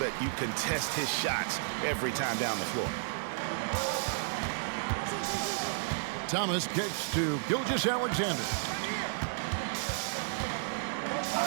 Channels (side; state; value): left; silent; 56 dB below the other